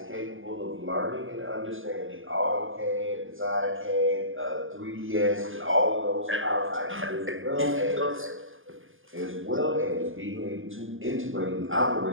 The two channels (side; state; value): left; late; 0.59 ms